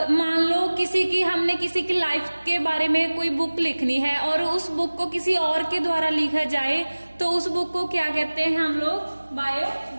मान लो हमने किसी की लाइफ के बारे में कोई बुक लिखनी है और उस बुक को किसी और के द्वारा लिखा जाए, तो उस बुक को क्या कहते हैं हम लोग?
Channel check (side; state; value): both; inverted; correlation -1.00